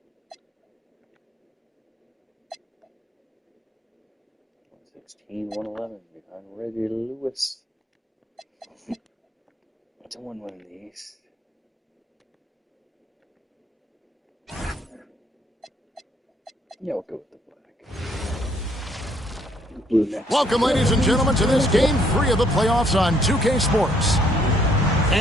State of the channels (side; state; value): both; normal; correlation 0.67